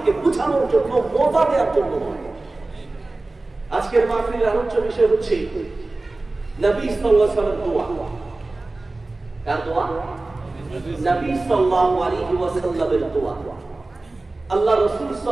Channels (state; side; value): quieter; left; 3.1 dB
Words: বুঝানোর জন্য, মজা দেওয়ার জন্য নয়। আজকের মাহফিলের আলোচ্য বিষয় হচ্ছে নবী সাল্লাল্লাহু আলাইহি ওয়াসাল্লামের দোয়া। কার দোয়া? নবী সাল্লাল্লাহু আলাইহি ওয়াসাল্লামের দোয়া। আল্লাহ রাসূল